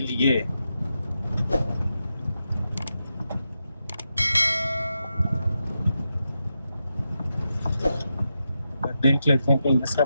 लिए। देख लेते हैं कहीं ऐसा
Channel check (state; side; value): inverted; both; correlation -0.87